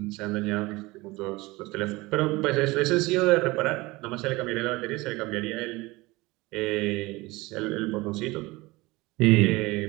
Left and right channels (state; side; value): quieter; left; 21.8 dB